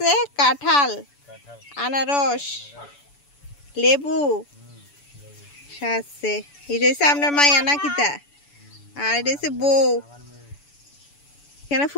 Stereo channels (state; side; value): late; right; 7.0 ms